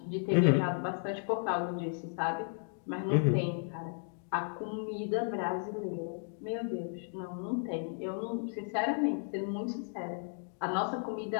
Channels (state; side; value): silent; right; 55 dB below the other